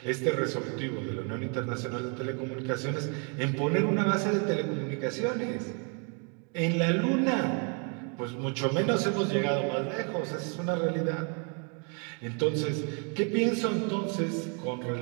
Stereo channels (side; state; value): left; quieter; 37.3 dB